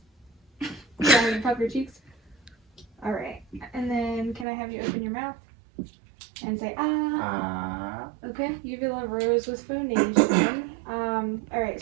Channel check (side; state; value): left; drops out; at 4.5 s